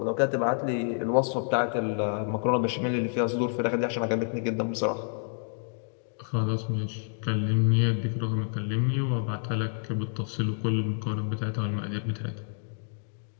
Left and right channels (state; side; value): silent; right; 59 dB below the other